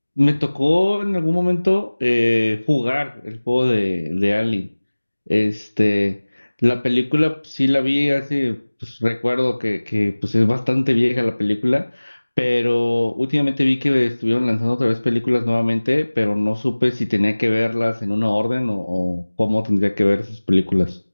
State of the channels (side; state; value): both; inverted; correlation -1.00